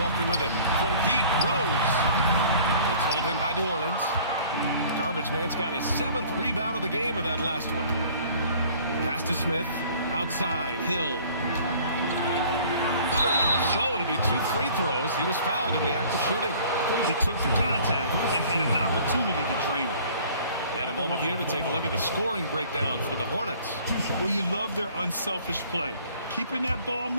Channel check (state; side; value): inverted; both; correlation -0.51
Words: with it from deep. Rose. It's hauled in by New Orleans. Garbage Man's got his 7th rebound of the game with that last one. Pass to Smith. Outside. Hill. So it'll be 2 free throws. He was fouled in the act of shooting. He took the contact and had an opportunity to drain it. And a moment here to take a look at the scoring breakdown for the Hornets. Well, you love their unselfish play. Keeping that ball